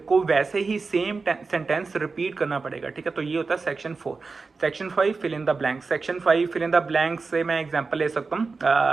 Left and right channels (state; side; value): quieter; left; 4.3 dB